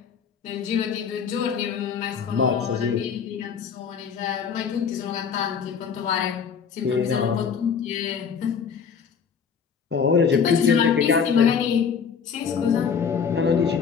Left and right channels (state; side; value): quieter; right; 6.6 dB